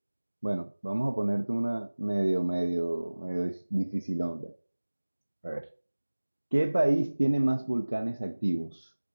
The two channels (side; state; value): both; inverted; correlation -1.00